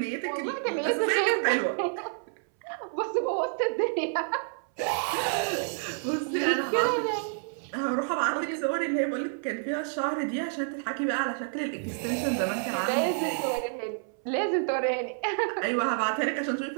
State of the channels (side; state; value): left; silent; 59 dB below the other